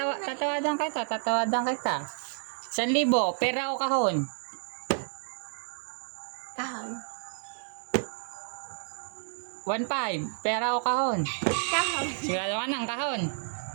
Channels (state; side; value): silent; left; 58 dB below the other